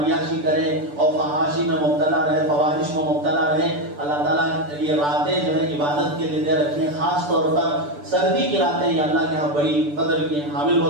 کریں اور فحاشی میں مبتلا رہے، فواحش میں مبتلا رہے. اللہ تعالیٰ یہ راتیں جو ہے عبادت کے لیے دے رکھی ہیں. خاص طور پر سردی کی راتیں یہ اللہ کے یہاں بڑی قدر کی حامل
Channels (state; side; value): late; left; 6.9 ms